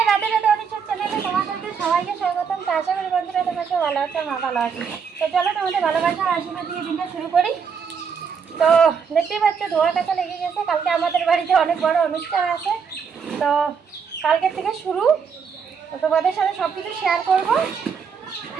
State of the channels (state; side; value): quieter; left; 6.4 dB